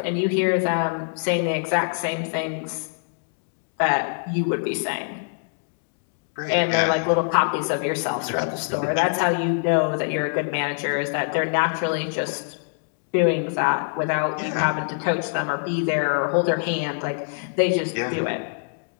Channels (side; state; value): right; silent; digital silence